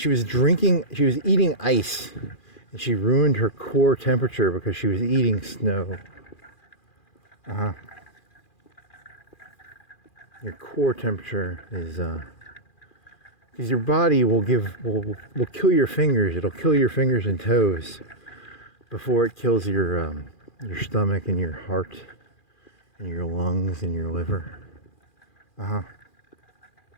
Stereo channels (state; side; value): late; right; 2.4 ms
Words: she was eating ice, and she ruined her core temperature because she was eating snow. Your core temperature is because your body will kill your fingers. It'll kill your fingers and toes before it kills your stomach and your heart and your lungs and your liver.